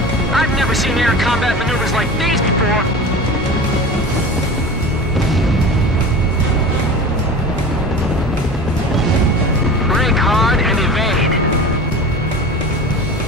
combat maneuvers like these before. Brake hard and evade.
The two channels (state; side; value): normal; both; correlation 0.35